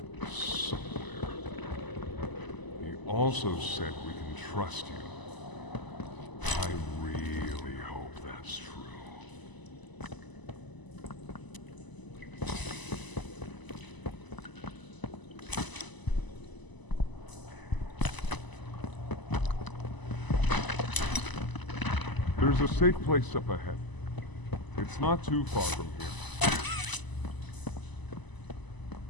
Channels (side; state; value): right; late; 1.0 ms